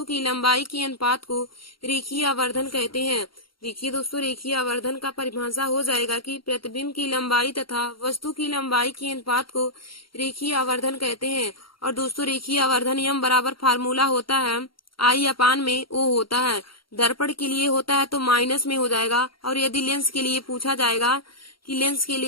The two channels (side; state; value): right; late; 0.73 ms